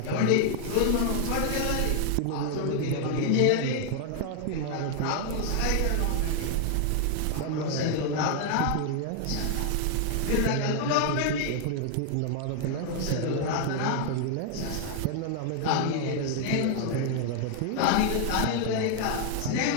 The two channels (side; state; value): both; different; correlation 0.00